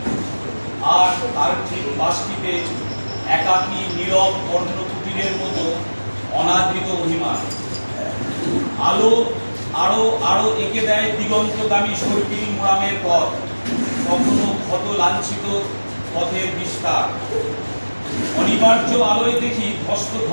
আর তার ঠিক পাশটিতে একাকী নীরব কর্ণকুটিরের মতো অনাদৃত অভিমান। আলো আরো আরো এঁকে দেয় দিগন্তগামী সর্পিল মোড়ামের পথ, কখনো ক্ষত লাঞ্ছিত পথের বিস্তার। অনিবার্য আলোয় দেখি ধস্ত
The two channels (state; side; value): inverted; both; correlation -1.00